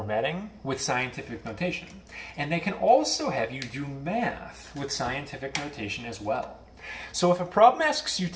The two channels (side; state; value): both; identical; correlation 1.00